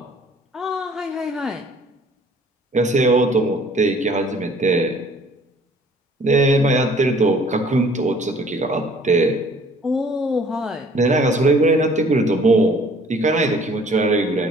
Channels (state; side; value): normal; both; correlation 0.55